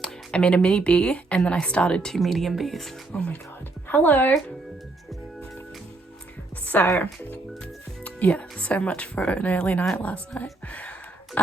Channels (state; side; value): quieter; left; 3.1 dB